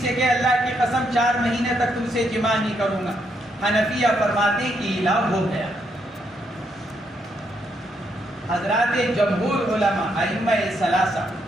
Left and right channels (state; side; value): normal; both; correlation 0.77